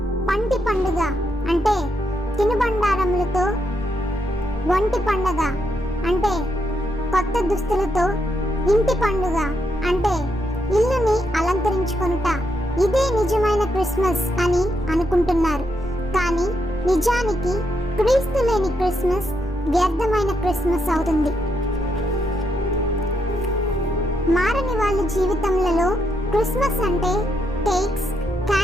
పంటి పండుగ అంటే తినుబండారములతో, ఒంటి పండుగ అంటే కొత్త దుస్తులతో, ఇంటి పండుగ అంటే ఇల్లుని అలంకరించుకొనుట, ఇదే నిజమైన క్రిస్మస్ అని అనుకుంటున్నారు. కానీ నిజానికి క్రీస్తు లేని క్రిస్మస్ వ్యర్థమైన క్రిస్మస్ అవుతుంది. మారని వాళ్ళ జీవితంలో క్రిస్మస్ అంటే కేక్స్,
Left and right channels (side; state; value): both; normal; correlation 0.80